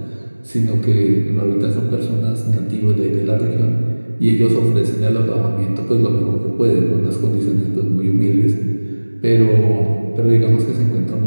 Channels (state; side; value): inverted; both; correlation -1.00